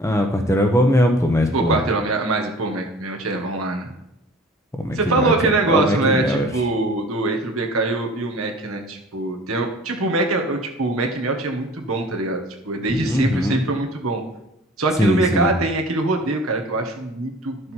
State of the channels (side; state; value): both; normal; correlation 0.45